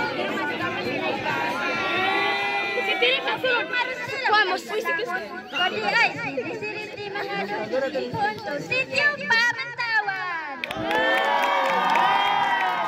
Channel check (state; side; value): identical; both; correlation 1.00